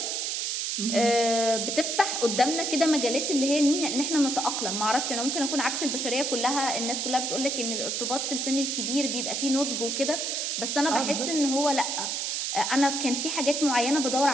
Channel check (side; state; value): right; noise; hiss, 1 dB below the sound